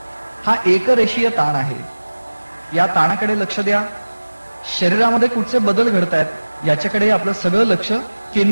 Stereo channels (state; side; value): inverted; both; correlation -1.00